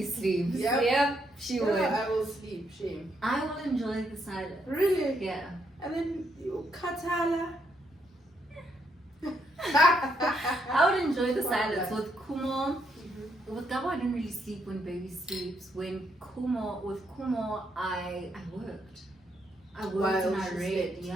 sleeps. Yep. She Yeah, would. I will sleep, shame. I will enjoy the silence. Really? Yeah. And then you katala. I would enjoy the Wow, silence. yeah. With Kumo, with Gabo, I didn't really sleep when baby sleeps. With Kumo, I worked. I worked While and I she read. slept.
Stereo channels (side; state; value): both; normal; correlation 0.76